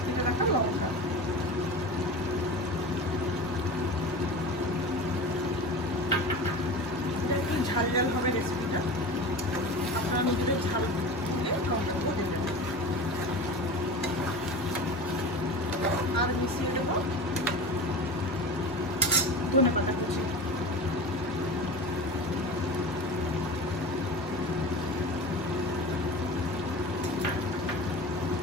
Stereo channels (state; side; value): normal; both; correlation 0.32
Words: এটা রাখা লঙ্কা, একটু ঝাল ঝাল হবে রেসিপিটা। আপনারা নিজেদের ঝাল দিয়ে লঙ্কাটা দেবেন। আর মিশিয়ে দেবো ধনেপাতা কুচি।